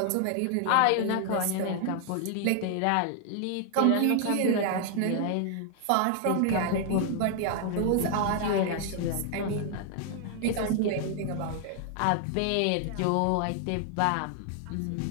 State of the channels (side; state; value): both; different; correlation 0.00